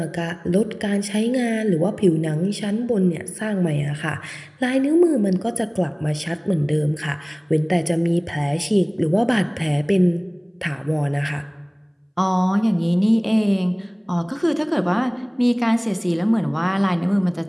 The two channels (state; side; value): identical; both; correlation 1.00